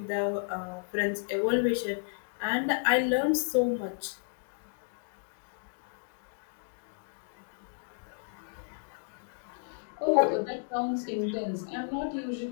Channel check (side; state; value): right; silent; digital silence